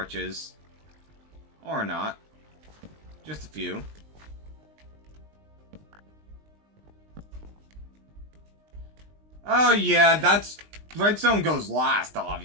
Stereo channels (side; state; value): left; late; 19 ms